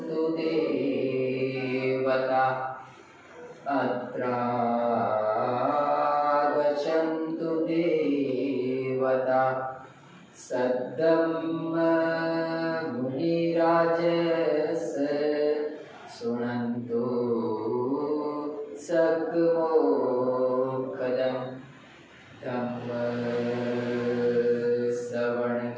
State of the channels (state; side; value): identical; both; correlation 1.00